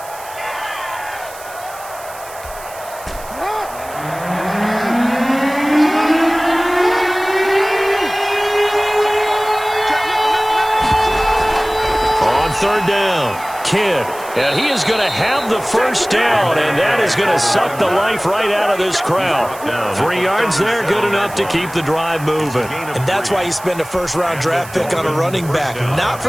On 3rd down, Kidd, and he is going to have the 1st down, and that is going to suck the life right out of this crowd. 3 yards there, good enough to keep the drive moving. And that's why you spend a 1st-round draft pick on a running back. Not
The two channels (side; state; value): right; noise; hiss, 17 dB below the sound